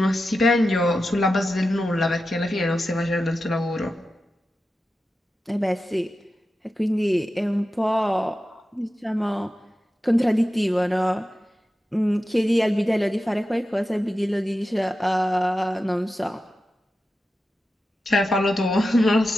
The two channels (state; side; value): normal; both; correlation 0.92